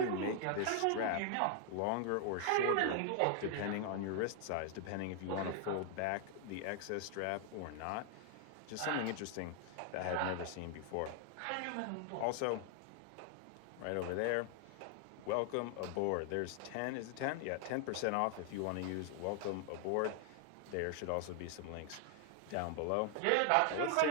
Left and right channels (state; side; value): different; both; correlation 0.00